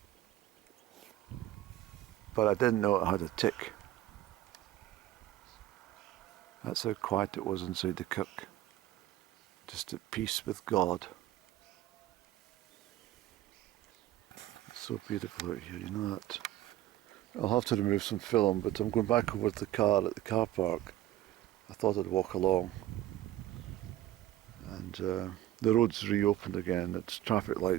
But I didn't know it had a tick. That's how quiet it was inside the kirk. Just at peace with God. It's so beautiful out here, you know that. I'll have to remove some film, but I'm going back over to the car at the car park. I thought I'd walk along. And the road's reopened again. It's traffic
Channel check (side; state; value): left; quieter; 14.3 dB